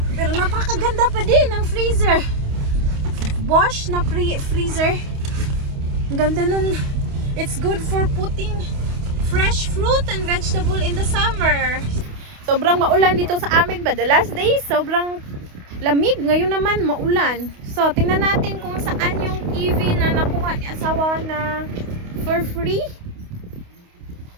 Pero napakaganda pa din ng freezer. Bosch na freezer. Ang ganda nun. It's good for putting fresh fruit and vegetable in the summer. Sobrang maulan dito sa amin ba? The last days, sobrang lamig. Ngayon naman, maulan. So, tingnan natin kung saan yung TV na nakuha ni asawa na for free.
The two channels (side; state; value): left; late; 28 ms